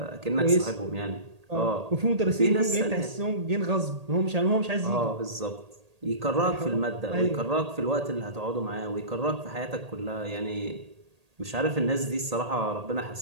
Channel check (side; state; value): left; late; 1.8 ms